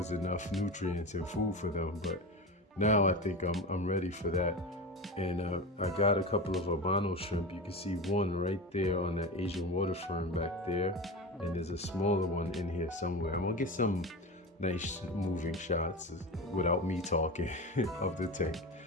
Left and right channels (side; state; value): both; normal; correlation 0.25